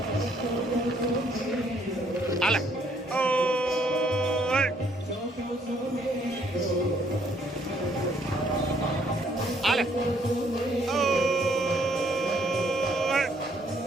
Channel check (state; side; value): normal; both; correlation 0.67